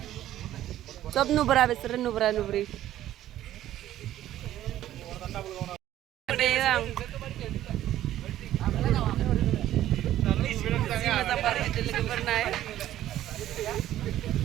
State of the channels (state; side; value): quieter; left; 13.0 dB